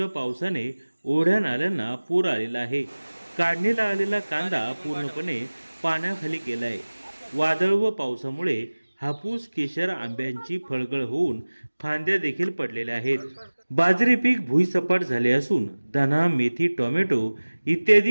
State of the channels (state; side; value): inverted; both; correlation -1.00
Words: पावसाने ओढ्या नाल्यांना पूर आलेला आहे। काढणीला आलेला कांदा पूर्णपणे पाण्याखाली गेलाय। वादळ व पावसामुळे हापूस, केशर, आंब्यांची फळगळ होऊन फांद्या देखील पडलेल्या आहेत। बाजरी पीक भुईसपाट झाले असून धना, मेथी, टोमॅटो